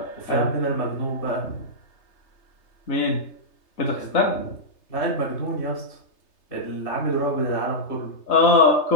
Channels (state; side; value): late; right; 3.3 ms